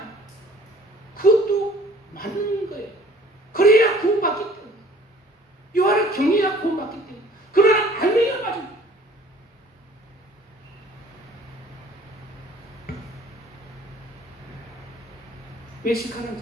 그것도 맞는 거예요. 그래야 구원받기 때문에. 여호와를 경외해야 구원받기 때문에. 그러나 알맹이가 맞습니다. 외식하는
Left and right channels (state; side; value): normal; both; correlation 0.53